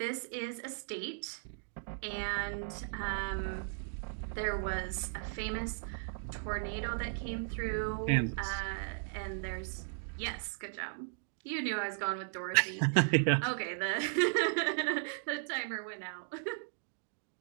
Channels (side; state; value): left; silent; digital silence